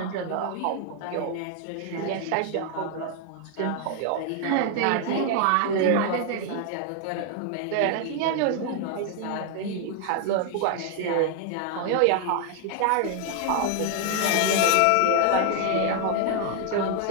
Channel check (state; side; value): different; both; correlation 0.00